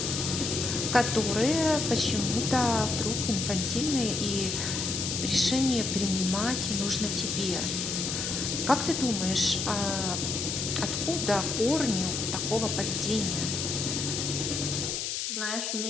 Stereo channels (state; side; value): noise; left; hiss, 2 dB below the sound